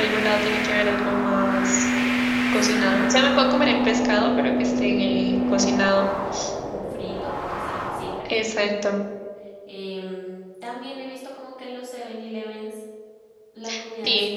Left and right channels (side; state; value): both; identical; correlation 1.00